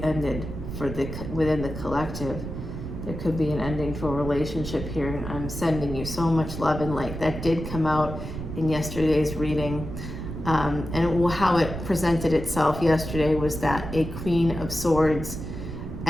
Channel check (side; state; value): right; noise; rumble, 7 dB below the sound